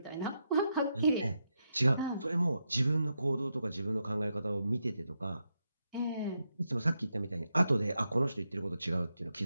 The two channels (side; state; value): both; inverted; correlation -0.84